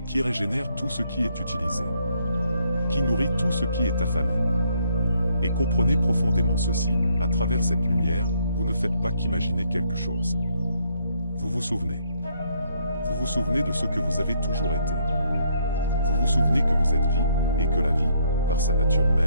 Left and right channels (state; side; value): inverted; both; correlation -0.70